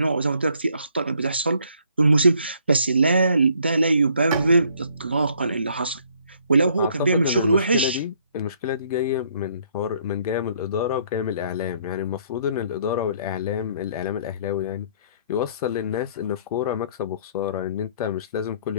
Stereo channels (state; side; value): inverted; both; correlation -0.64